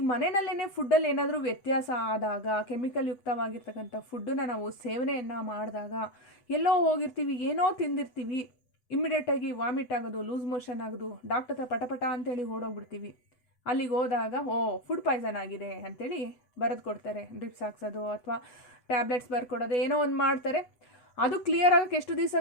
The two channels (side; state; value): right; late; 8.2 ms